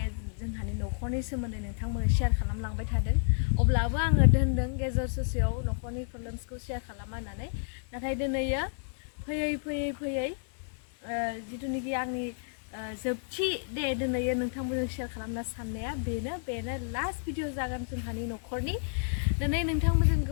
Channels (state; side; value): silent; right; digital silence